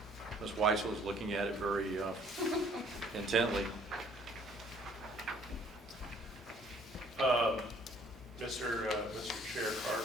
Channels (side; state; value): both; normal; correlation 0.60